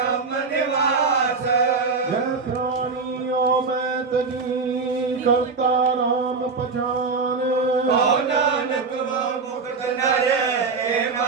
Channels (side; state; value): left; quieter; 4.6 dB